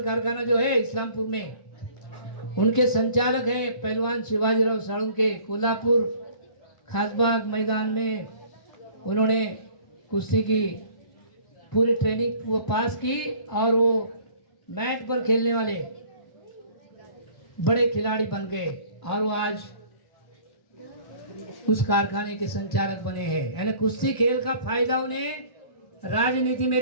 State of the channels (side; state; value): right; late; 1.0 ms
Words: कारखाना जो है इस्लामपुर में, उनके संचालक हैं पहलवान शिवाजीराव साळुंके। कोल्हापुर खासबाग मैदान में उन्होंने कुश्ती की पूरी ट्रेनिंग वो पास की और वो मैट पर खेलने वाले बड़े खिलाड़ी बन गए और वो आज उस कारखाने के संचालक बने हैं। यानी कुश्ती खेल का फायदा उन्हें राजनीति में